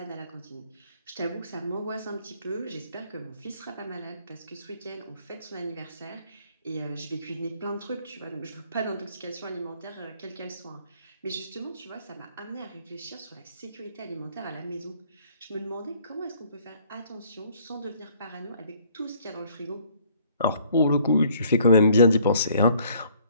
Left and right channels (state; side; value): inverted; both; correlation -0.61